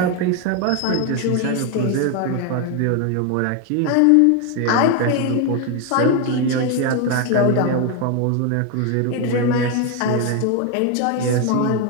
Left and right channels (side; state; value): both; different; correlation 0.01